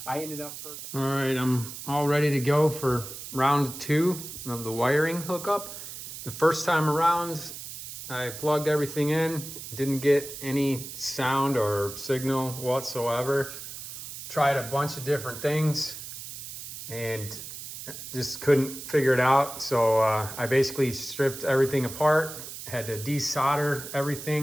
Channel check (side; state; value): right; noise; hiss, 10 dB below the sound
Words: I ended up perfect. All right, I'm all ready to go for round 2 of the wiring hookup. The first time around, I plugged everything in, didn't get any sound or signal whatsoever. Tried a bunch of different things, and just couldn't figure it out. So I basically stripped everything apart, had to desolder